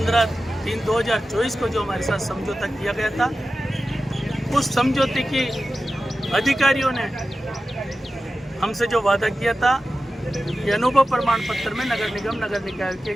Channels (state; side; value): normal; both; correlation 0.93